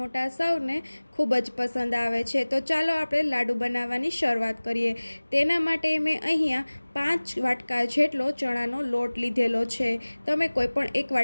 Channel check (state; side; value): inverted; both; correlation -1.00